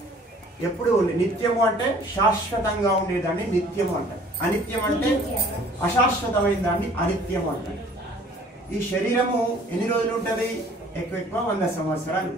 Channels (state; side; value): normal; both; correlation 0.53